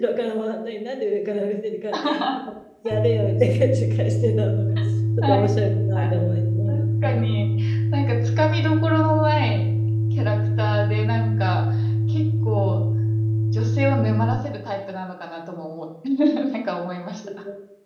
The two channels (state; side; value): identical; both; correlation 1.00